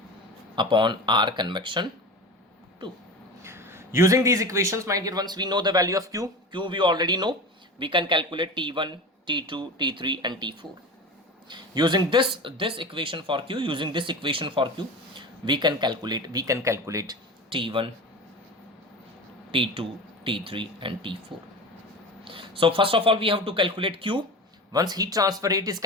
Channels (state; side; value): normal; both; correlation 0.30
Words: upon R convection 2. Using these equations, my dear ones, we know the value of Q. Q we already know. We can calculate T1, T2, T3 and T4. Using this equation for Q, we can calculate T1, T2, T3 and T4. So first of all, we have to calculate Q. Once heat transfer rate is